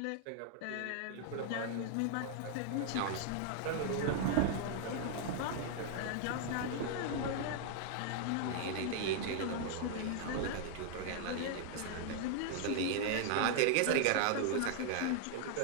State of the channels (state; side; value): different; both; correlation 0.00